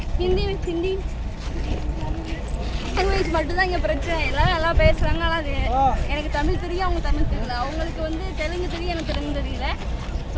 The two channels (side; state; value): both; identical; correlation 1.00